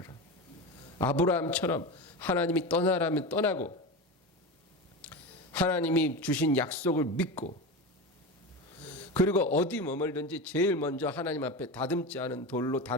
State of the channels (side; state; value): both; normal; correlation 0.24